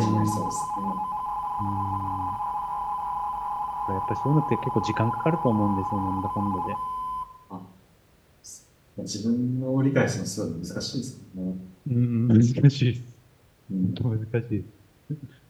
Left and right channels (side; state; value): both; identical; correlation 1.00